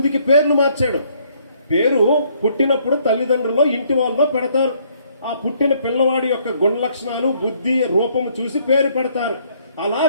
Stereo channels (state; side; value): inverted; both; correlation -0.66